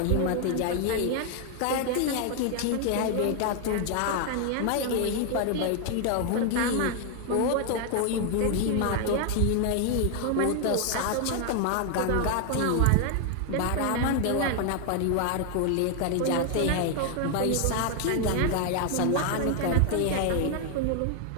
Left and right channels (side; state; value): both; different; correlation 0.00